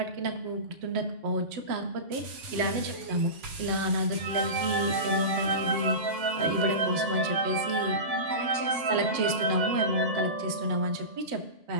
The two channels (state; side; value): late; left; 7.8 ms